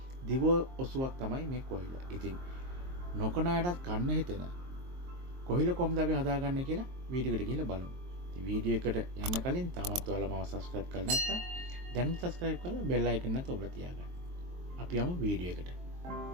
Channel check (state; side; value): late; left; 23 ms